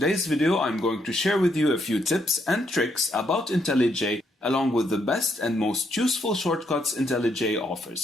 video I'm going to share with you a few tips and tricks about IntelliJ along with the best and most useful shortcuts IntelliJ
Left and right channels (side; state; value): both; normal; correlation 0.75